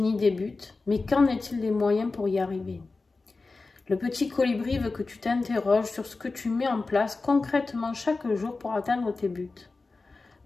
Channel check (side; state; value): right; quieter; 3.7 dB